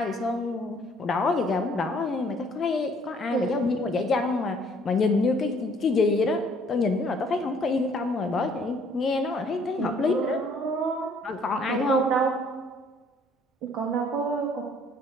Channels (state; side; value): normal; both; correlation 0.61